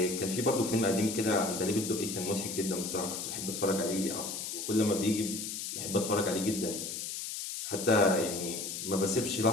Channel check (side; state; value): left; noise; hiss, 5 dB below the sound